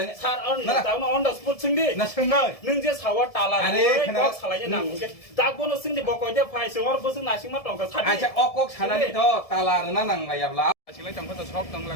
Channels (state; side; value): late; right; 1.7 ms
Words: सर दाउन अन द स्पॉट सोंदि ना सोंनाय नों जे सावा ताला কক सालायनो नांगे दागबोनो सोंदि कयटा फाइ सोर बोसों नासिं मा टंका सादि आचा अকক सानानि तो ताला ना नांलायाब्ला आसिलाय तंखो सब